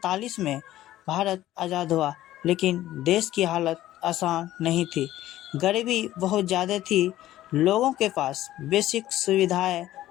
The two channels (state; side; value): quieter; right; 14.3 dB